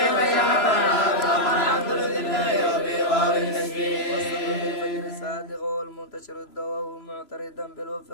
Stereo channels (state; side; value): late; right; 3.0 ms